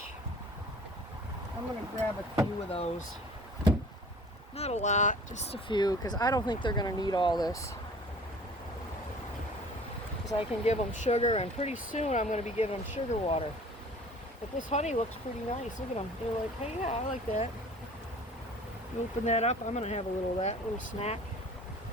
I'm gonna grab a few of those. Not a lot, just a few, because I don't think they're gonna need all this. Because I can give them sugar, and pretty soon I'm gonna be giving them sugar water. But this honey looks pretty nice. Look at them. They're like, hey, yeah, I like that. You open that up, I'm gonna have a little of that, little snack.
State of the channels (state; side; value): normal; both; correlation 0.47